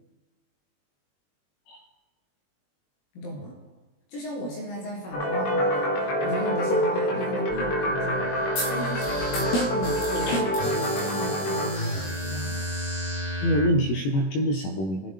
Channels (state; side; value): late; right; 21 ms